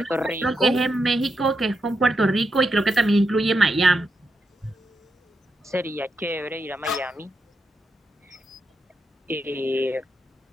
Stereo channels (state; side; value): normal; both; correlation 0.84